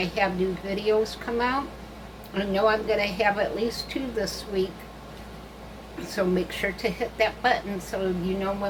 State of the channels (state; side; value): identical; both; correlation 1.00